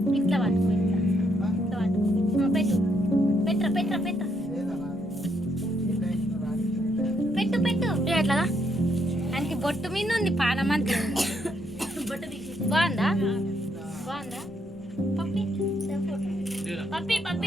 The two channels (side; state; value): both; normal; correlation 0.75